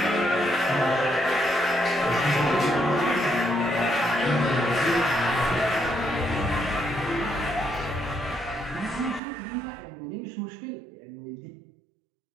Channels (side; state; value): left; drops out; at 9.2 s